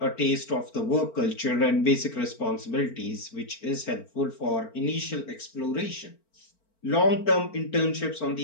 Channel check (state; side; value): late; right; 4.4 ms